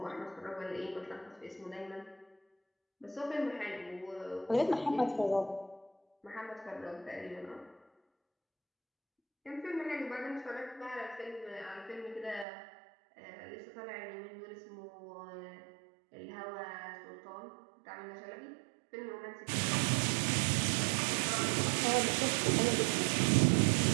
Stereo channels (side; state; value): left; drops out; at 12.5 s